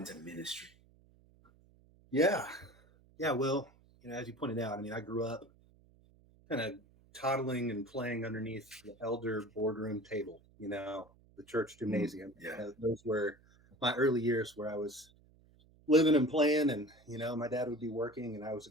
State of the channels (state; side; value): noise; right; hum, 29 dB below the sound